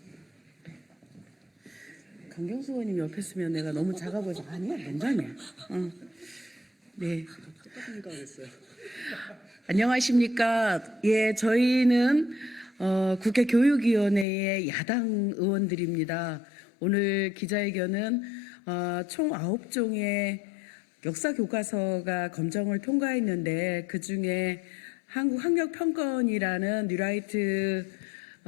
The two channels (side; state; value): right; drops out; at 14.2 s